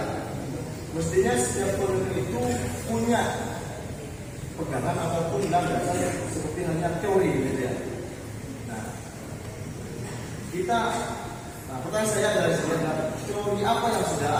mestinya setiap peneliti itu punya pegangan ataupun landasan seperti hanya teori gitu ya. Nah, pertanyaan saya adalah sebenarnya teori apa yang sudah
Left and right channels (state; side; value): identical; both; correlation 1.00